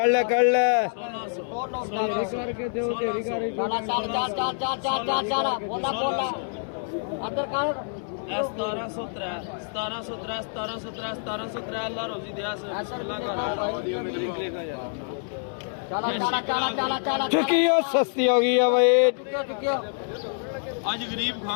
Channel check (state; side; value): silent; right; digital silence